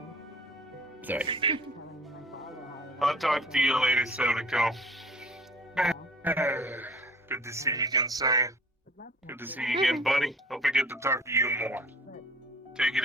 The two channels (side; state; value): both; normal; correlation 0.49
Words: Sorry. I'll talk to you later, Sodako. Good to see you again, Sam. Good to see you again, buddy. Hope I get to talk to you more. Take it